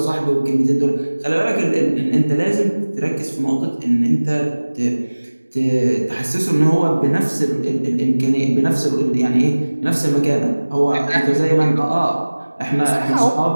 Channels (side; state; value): both; inverted; correlation -1.00